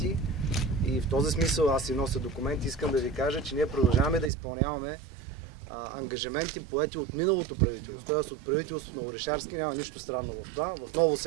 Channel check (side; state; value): left; drops out; at 4.3 s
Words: И в този смисъл аз си нося документи. Искам да ви кажа, че ние продължаваме да изпълняваме ангажименти, поети от миналото правителство, т.е. от правителството на Орешарски. Няма нищо странно в това. В Ново